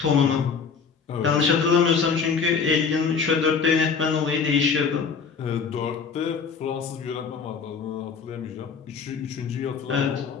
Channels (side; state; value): right; quieter; 5.7 dB